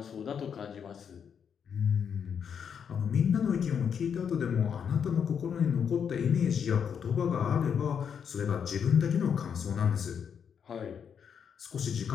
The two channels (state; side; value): quieter; right; 7.4 dB